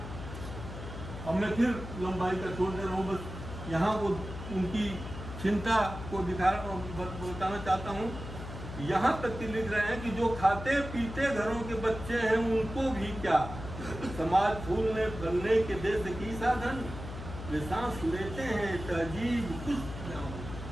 अब मैं फिर लंबाई का छोड़ दे रहा हूँ, बस यहाँ वो उनकी चिंता को बताना चाहता हूँ। यहाँ तक कि लिख रहे हैं कि जो खाते पीते घरों के बच्चे हैं उनको भी क्या, समाज फूलने फलने के देश की साधन, वे सांस लेते हैं तहजीब कुछ,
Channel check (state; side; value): noise; left; hum, 10 dB below the sound